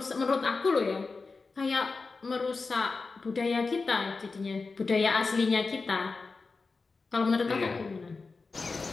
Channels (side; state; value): right; quieter; 4.2 dB